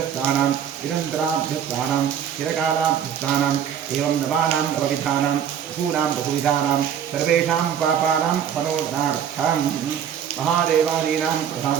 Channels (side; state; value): left; quieter; 8.8 dB